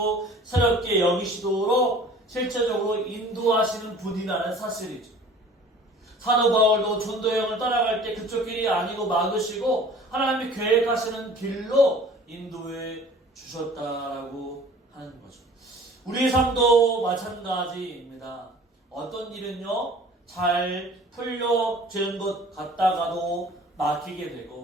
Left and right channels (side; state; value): both; normal; correlation 0.47